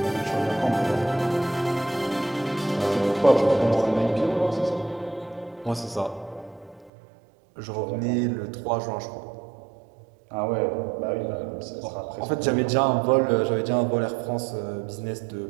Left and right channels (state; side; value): drops out; left; at 6.9 s